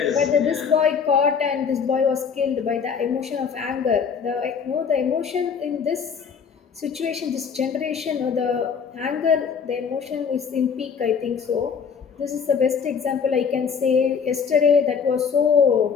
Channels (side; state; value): right; quieter; 6.4 dB